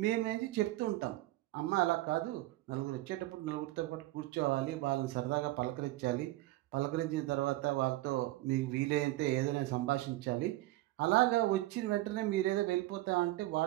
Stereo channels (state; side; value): quieter; left; 17.6 dB